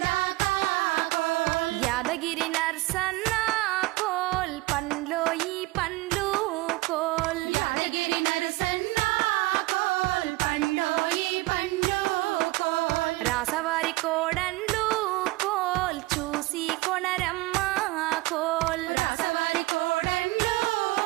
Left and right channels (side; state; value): left; quieter; 20.8 dB